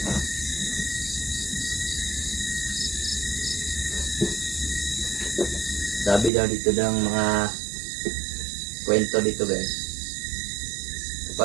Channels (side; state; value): left; drops out; at 6.3 s